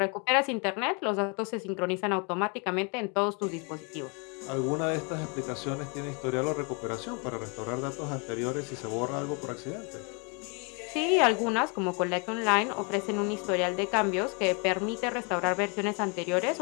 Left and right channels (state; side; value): quieter; right; 34.2 dB